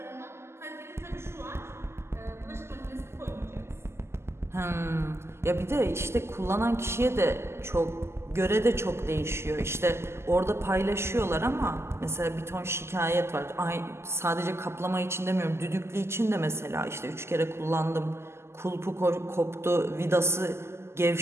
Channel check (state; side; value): late; left; 0.12 ms